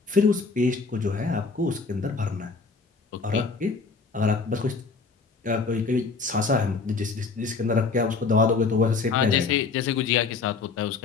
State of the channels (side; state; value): right; quieter; 4.5 dB